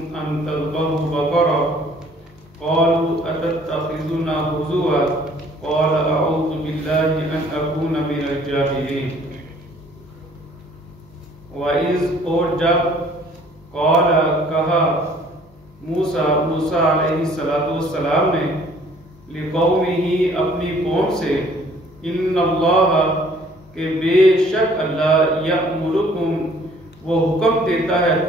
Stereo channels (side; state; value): both; normal; correlation 0.57